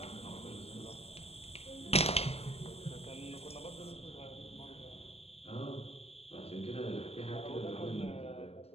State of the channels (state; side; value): late; right; 0.29 ms